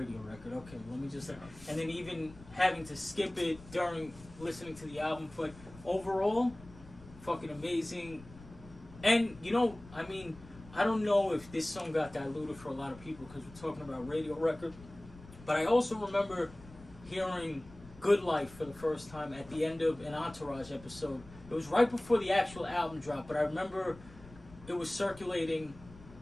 record. Okay, let me just... And then even having to skip it during listening to the album. But overall, fucking amazing. And, you know, I mean, I don't know if this song got diluted for a lot of people because we're talking about radio record. But I also remember hearing Good Life for the first time at the end of an Entourage episode. It was right before the actual album dropped, but I remember it was circulating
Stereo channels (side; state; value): left; noise; rumble, 19 dB below the sound